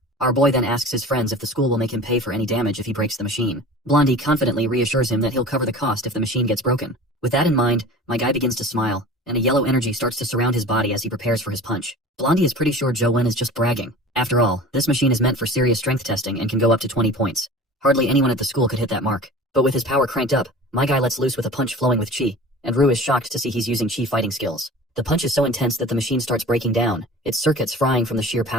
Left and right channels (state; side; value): normal; both; correlation 0.39